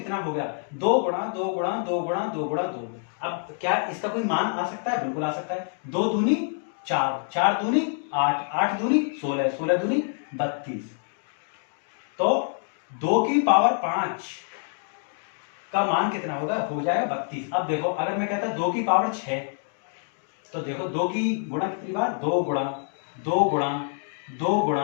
हो गया? 2 गुणा 2 गुणा 2 गुणा 2 गुणा 2। अब क्या इसका कोई मान आ सकता है? बिल्कुल आ सकता है। 2 दूनी 4, 4 दूनी 8, 8 दूनी 16, 16 दूनी 32। तो 2 की पावर 5 का मान कितना होगा? हो जाएगा 32। अब देखो, अगर मैं कहता 2 की पावर 6 तो देखो 2 की गुणा कितनी बार? 2 गुणा 2 गुणा 2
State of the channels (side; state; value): right; silent; 55 dB below the other